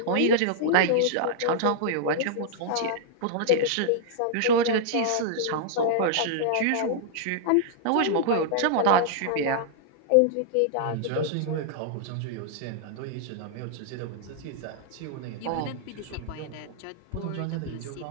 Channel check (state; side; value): different; both; correlation -0.01